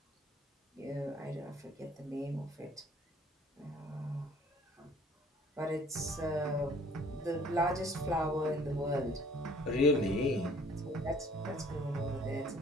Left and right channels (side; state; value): both; normal; correlation 0.55